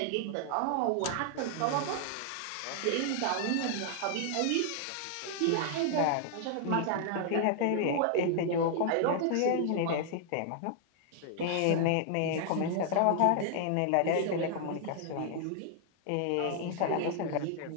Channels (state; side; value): different; both; correlation -0.01